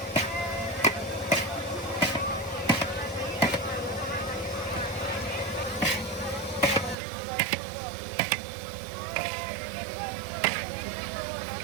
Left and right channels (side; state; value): left; drops out; at 7.0 s